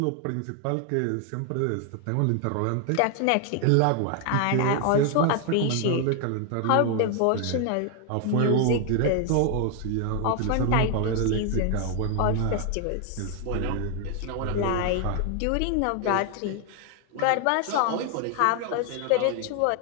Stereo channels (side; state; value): both; different; correlation 0.00